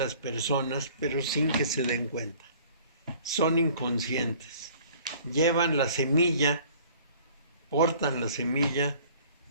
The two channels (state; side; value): inverted; both; correlation -0.52